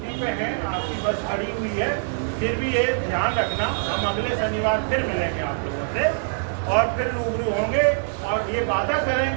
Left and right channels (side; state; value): left; silent; 63 dB below the other